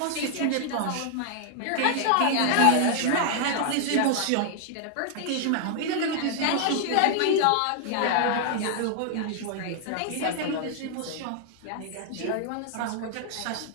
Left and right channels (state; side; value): different; both; correlation 0.00